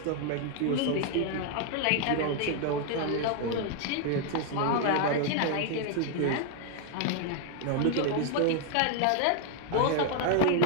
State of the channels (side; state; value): both; different; correlation 0.00